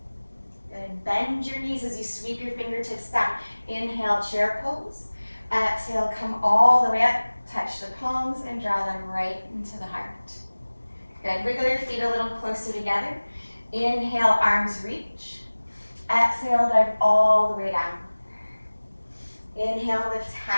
Good. Bend your knees as you sweep your fingertips down. Inhale, chair pose. Exhale, come all the way up. Touch the palms and draw them right into the heart. Good. Wiggle your feet a little closer together. Inhale, arms reach. Exhale, dive all the way down. Inhale, lift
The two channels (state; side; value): inverted; both; correlation -1.00